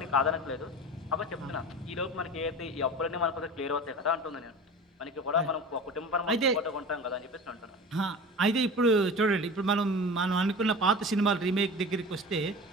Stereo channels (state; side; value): normal; both; correlation 0.34